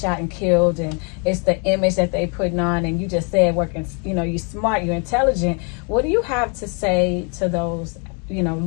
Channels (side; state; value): right; quieter; 36.1 dB